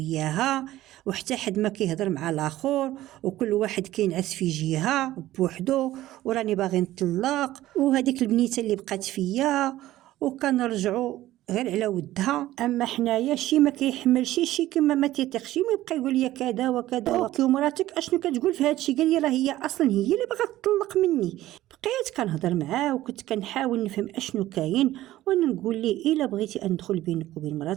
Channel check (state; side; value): quieter; left; 15.1 dB